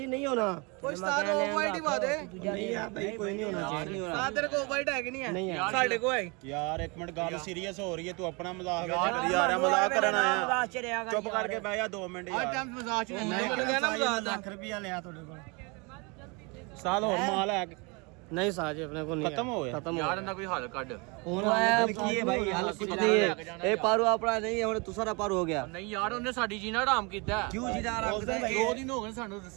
नहीं होना ਕੋਈ ਸਟਾਰ ਆਫ ਵਾਈਟ ਹੀ ਬਾਦੇ नहीं यार भाई कोई नहीं होना चाहिए ਸਾਹ ਤੇਰੇ ਕੋਲ ਵਾਈਟ ਹੈ ਕਿ ਨਹੀਂ ਹੈ नहीं यार ਸਾਡੇ ਕੋਲ ਹੈ ਯਾਰ ਇੱਕ ਮਿੰਟ ਗੱਲ ਸੀਰੀਅਸ ਹੋ ਰਹੀ ਹੈ ਤੂੰ ਆਪਣਾ ਮਜ਼ਾਕ ਵਿੱਚ ਕਰੀ ਜਾ ਰਿਹਾ ਮਜ਼ਾਕ ਕਰਨ ਆਇਆ ਮਜ਼ਾਕ ਚ ਰਿਹਾ ਕਰ ਚੁੱਪ ਕਰਕੇ ਬਹਿ ਜਾ 2 ਮਿੰਟ ਯਾਰ ਮਜ਼ਾਕ ਚ लाख रुपया लिया थोड़े को ਸਾਲ ਹੋਰ ਮਾਲ ਹੈ नहीं साजी अपने को नहीं खत्म हो गया खत्म ਯਾਰ ਇਹਨਾਂ ਕੋਈ ਹੱਲ ਕੱਢ की है भाई हाल कुछ नहीं है ए पारू अपना नहीं है हमने दूसरा पारू हो गया ਨਹੀਂ ਯਾਰ ਉਹਨੇ ਸਾਡੀ ਜੀਣਾ ਹਰਾਮ ਕੀਤਾ क्यों जीना आराम से 2 ਦਿਨ ਹੋ ਗਏ ਸਾਨੂੰ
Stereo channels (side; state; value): left; quieter; 29.6 dB